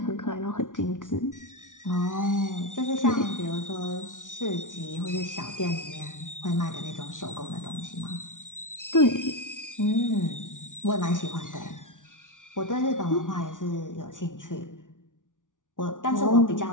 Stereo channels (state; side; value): late; right; 0.87 ms